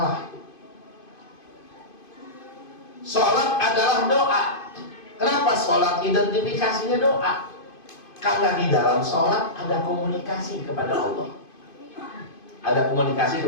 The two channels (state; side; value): late; right; 2.5 ms